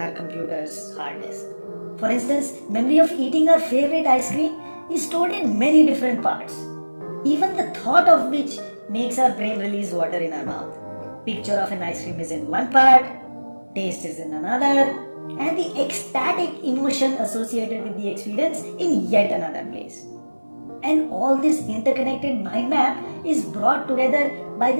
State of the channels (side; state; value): both; inverted; correlation -1.00